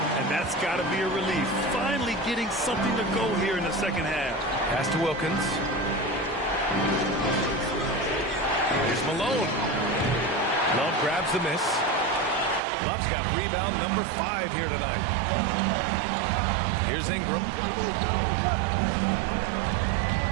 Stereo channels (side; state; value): left; drops out; at 12.6 s